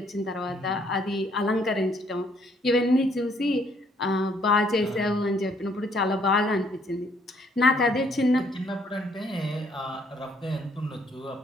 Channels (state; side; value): normal; both; correlation 0.66